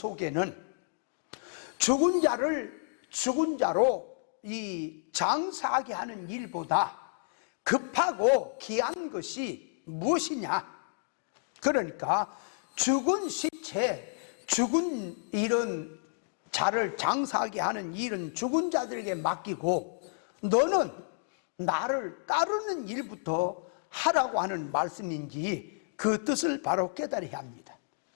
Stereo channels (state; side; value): silent; right; digital silence